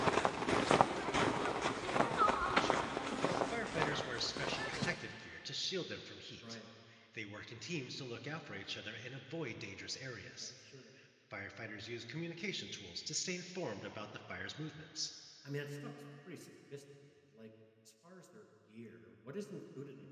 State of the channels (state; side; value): identical; both; correlation 1.00